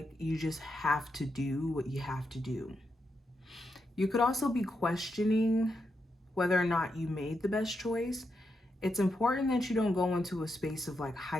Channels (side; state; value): both; normal; correlation 0.84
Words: you just have to do what you have to do. You could also be questioning whether or not you made the best choice. It's important that you don't go into a space of like